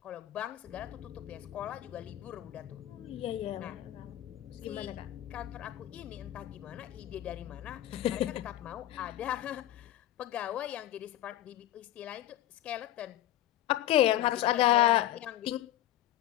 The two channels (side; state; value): right; quieter; 13.4 dB